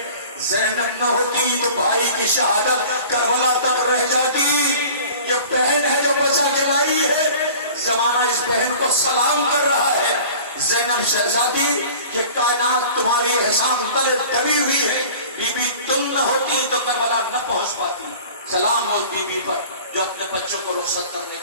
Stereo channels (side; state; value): both; inverted; correlation -0.43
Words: زینب نہ ہوتی تو بھائی کی شہادت کربلا تک رہ جاتی۔ یہ بہن ہے جو بچا کے لائی ہے، زمانہ اس بہن کو سلام کر رہا ہے۔ زینب شہزادی یہ کائنات تمہاری احسان تلے دبی ہوئی ہے، بی بی تم نہ ہوتی تو کربلا نہ پہنچ پاتی۔ سلام ہو بی بی پر جو اپنے بچوں کو رخصت کرنے